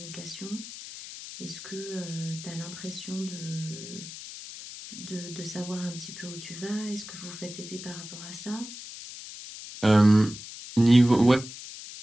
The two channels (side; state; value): left; noise; hiss, 12 dB below the sound